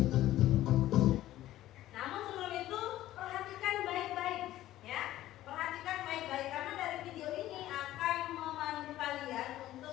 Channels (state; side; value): quieter; right; 14.4 dB